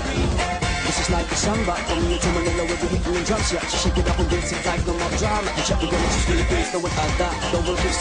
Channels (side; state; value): both; identical; correlation 1.00